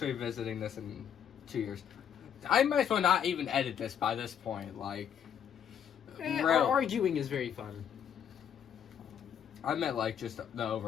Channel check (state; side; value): quieter; right; 8.7 dB